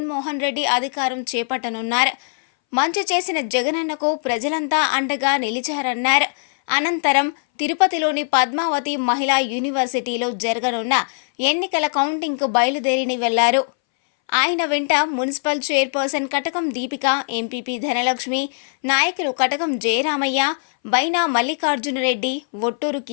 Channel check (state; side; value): silent; right; 63 dB below the other